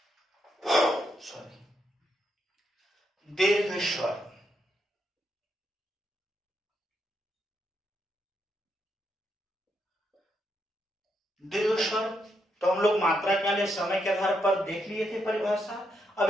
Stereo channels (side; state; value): both; normal; correlation 0.80